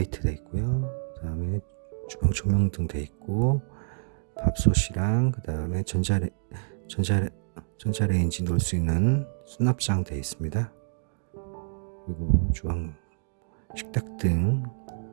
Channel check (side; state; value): left; silent; digital silence